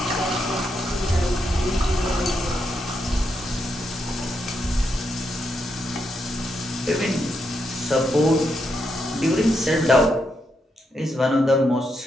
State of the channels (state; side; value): normal; both; correlation 0.81